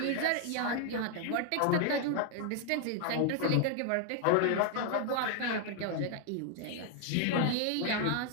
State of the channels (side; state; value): both; different; correlation 0.00